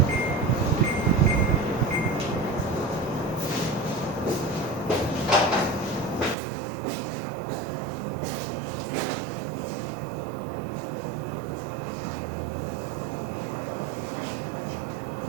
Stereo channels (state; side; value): drops out; left; at 6.4 s